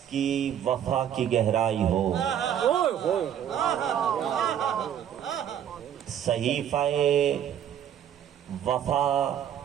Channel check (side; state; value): left; quieter; 9.7 dB